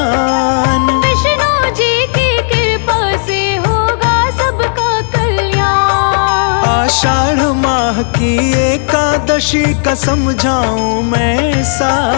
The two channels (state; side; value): silent; right; digital silence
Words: विष्णु जी की कृपा से होगा सबका कल्याण। आषाढ़ माह की एकादशी का समझाऊं मैं